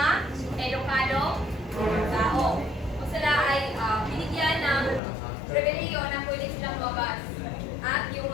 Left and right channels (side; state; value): right; drops out; at 5.0 s